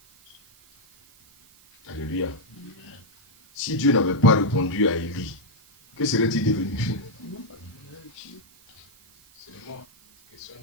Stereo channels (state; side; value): noise; right; hiss, 27 dB below the sound